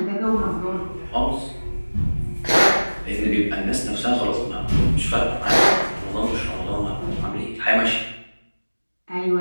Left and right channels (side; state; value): both; inverted; correlation -1.00